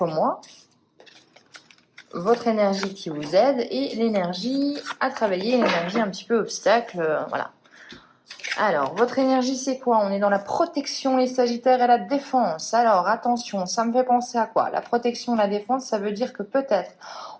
mois. Votre énergie qui vous aide et l'énergie à travailler, l'énergie un petit peu obstacle, voilà. Alors, votre énergie c'est quoi? On est dans la protection, les Sagittaires, et la défense. Alors, attention, ça me fait penser à quoi? La protection, la défense, ça veut dire que peut-être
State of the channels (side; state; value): both; identical; correlation 1.00